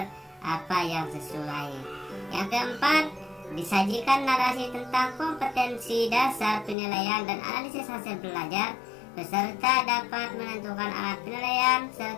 apa yang sesuai. Yang keempat, disajikan narasi tentang kompetensi dasar penilaian dan analisis hasil belajar. Peserta dapat menentukan alat penilaian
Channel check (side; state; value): right; drops out; at 6.8 s